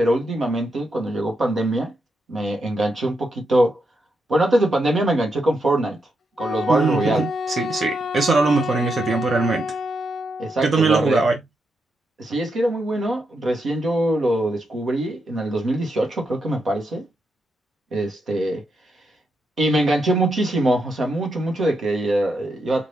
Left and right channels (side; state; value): both; normal; correlation 0.83